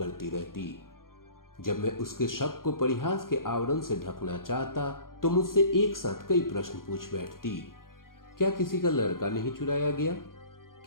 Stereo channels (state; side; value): late; right; 0.91 ms